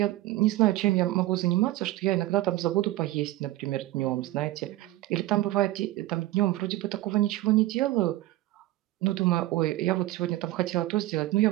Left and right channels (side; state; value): left; quieter; 16.8 dB